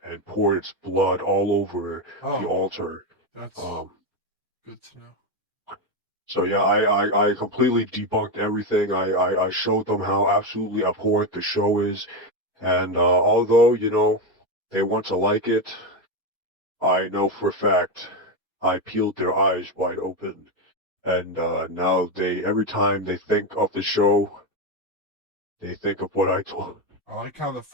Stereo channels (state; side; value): normal; both; correlation 0.11